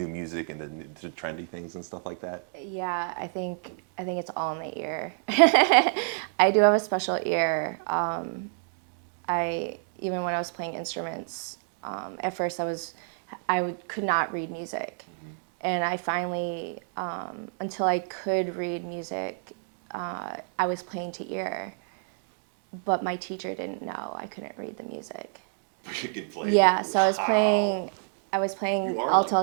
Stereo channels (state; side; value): silent; left; digital silence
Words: music and the trendy things and stuff like that? Yeah, I think it's all in the ear. I do have a special ear. Even when I was playing instruments, at first could not read music, and I finally, until I could read music, I was playing to ear, but my teacher didn't know I couldn't read the music. You could play. Yeah, so I was playing